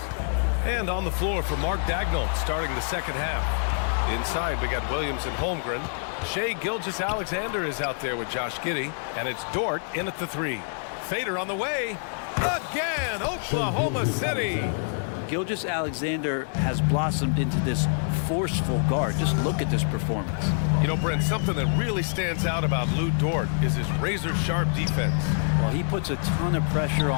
And on the floor for Mark Daigneault starting the second half. Inside, we got Williams and Holmgren. Shai Gilgeous-Alexander is out there with Josh Giddey. And it's Dort in at the 3. Fader on the way. Again, Oklahoma City. Gilgeous-Alexander has blossomed into this forceful guard. Just look at this performance. You know, Brent, something that really stands out about Lou Dort is his razor-sharp defense. Well, he puts a ton of pressure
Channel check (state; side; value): silent; right; digital silence